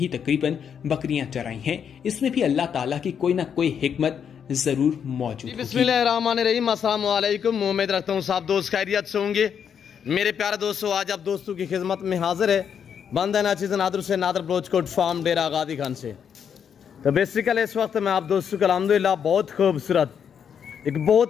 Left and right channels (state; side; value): quieter; right; 7.7 dB